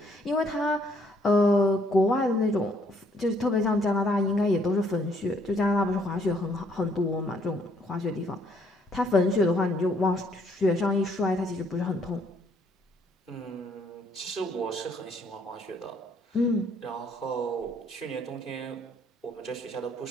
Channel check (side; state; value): both; normal; correlation 0.67